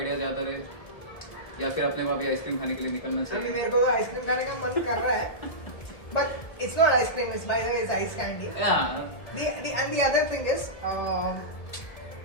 ज्यादा रहे या फिर अपने वहाँ भी आइसक्रीम खाने के लिए निकलना अभी चाहिए. मेरे को तो आइसक्रीम खाने का मन कर रहा है, but it's not ice cream, it's by the way it's ice candy. Yeah. And the other thing is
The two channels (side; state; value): right; late; 1.7 ms